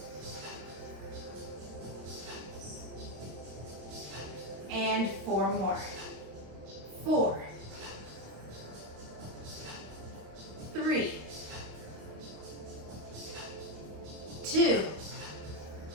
And 4 more. 4, 3, 2,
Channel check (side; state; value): left; late; 26 ms